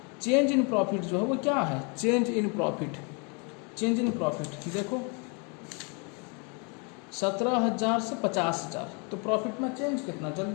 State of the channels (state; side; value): quieter; right; 34.2 dB